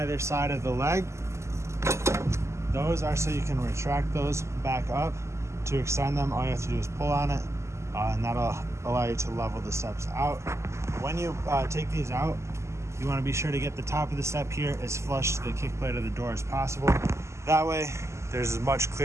side of the leg. Those are so you can retract those back up. To extend them, all you have to do is pull on it, and that'll allow you to level the steps out. When you take these out, you want to be sure to get the top of the step here as flush to the kick plate of the door as possible. That way, there's as much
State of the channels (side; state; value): left; late; 0.13 ms